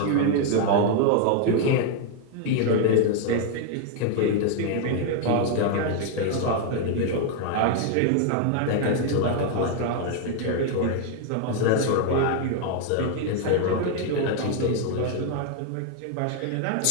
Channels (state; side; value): different; both; correlation 0.00